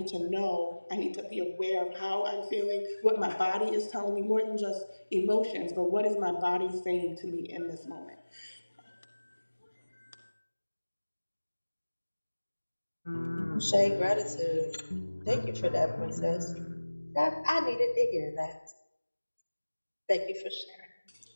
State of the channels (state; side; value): inverted; both; correlation -1.00